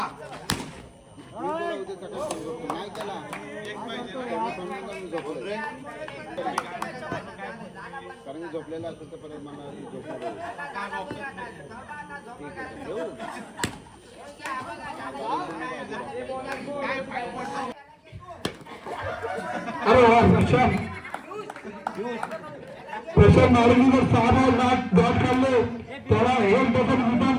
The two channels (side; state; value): both; identical; correlation 1.00